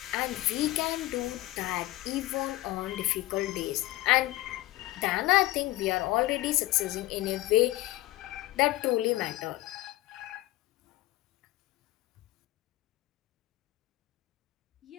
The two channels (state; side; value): quieter; right; 17.5 dB